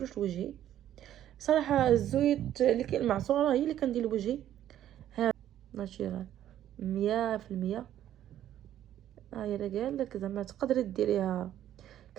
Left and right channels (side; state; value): left; quieter; 11.7 dB